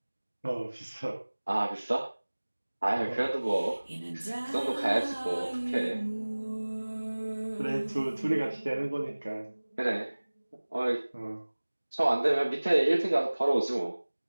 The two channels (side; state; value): both; inverted; correlation -1.00